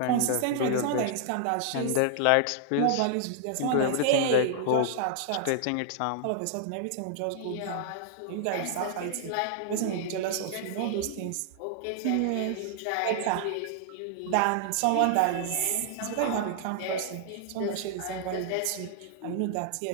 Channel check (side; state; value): both; different; correlation -0.01